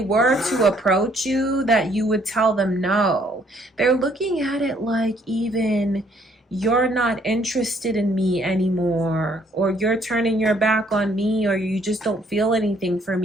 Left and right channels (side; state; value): both; normal; correlation 0.65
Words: to approach you, that you would tell them no. They're looking at it like, even you're not interested in me anymore, or you're turning your back on me, or you just don't feel anything for